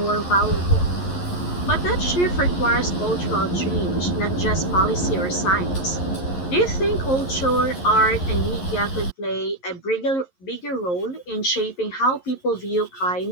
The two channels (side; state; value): right; late; 11 ms